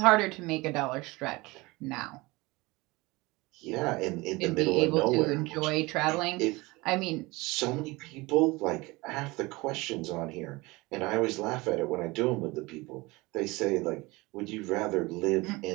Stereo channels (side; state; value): left; quieter; 22.8 dB